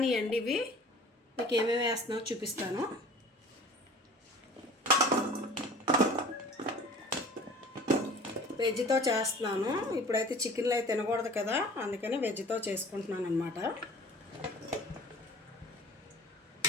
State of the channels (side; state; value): both; normal; correlation 0.44